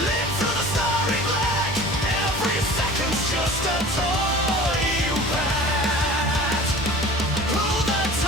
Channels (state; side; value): normal; both; correlation 0.42